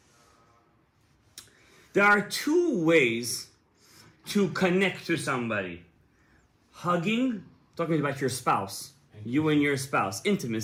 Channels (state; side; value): identical; both; correlation 1.00